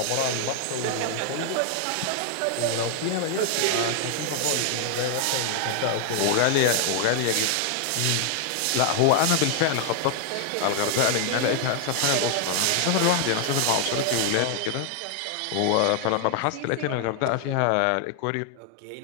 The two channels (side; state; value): both; different; correlation 0.00